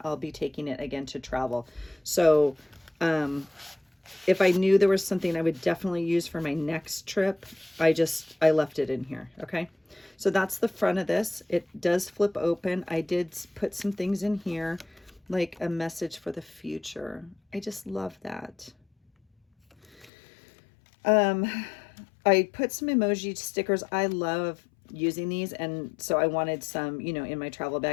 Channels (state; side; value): drops out; right; at 20.1 s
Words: I'll be taking it again to travel. So if I knew there was something I would definitely use for my next trip, I left it in here, okay? So that's the front of this. It does flip open. I did put some things in here, like a message for the future. I just love that. I put some emoji stickers. I love using these, and so I wanted some, you know, in my travel